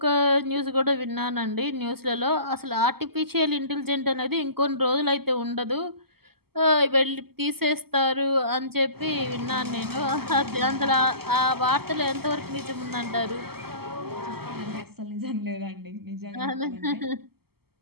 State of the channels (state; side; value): late; left; 0.96 ms